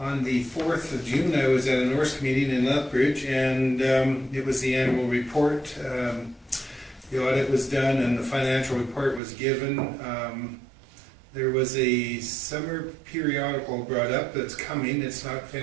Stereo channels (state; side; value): drops out; left; at 9.2 s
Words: the 4th of June, I was at a Norse meeting in Lethbridge, and it was the annual report. The audit was done and the financial report was given. There was a summer periodical brought up that's coming, it's not